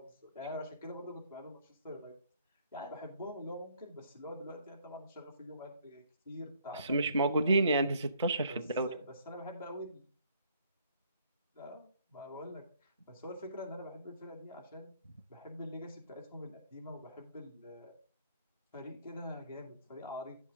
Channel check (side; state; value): both; inverted; correlation -0.64